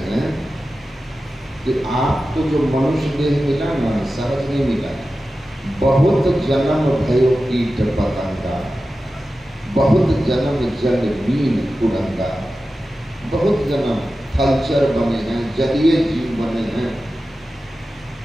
हैं कि आपको जो मनुष्य देह मिला ना, सहज नहीं मिला। बहुत जन्म भयो कीट पतंगा, बहुत जन्म जल बीन कुरंगा। बहुत जन्म थलचर बने हैं, जलीय जीव बने हैं।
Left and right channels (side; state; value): both; normal; correlation 0.93